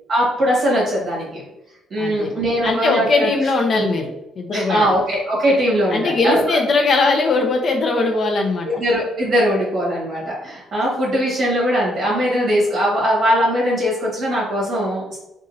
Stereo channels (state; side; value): normal; both; correlation 0.72